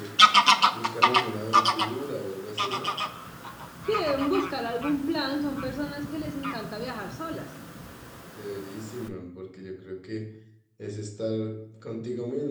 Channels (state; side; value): identical; both; correlation 1.00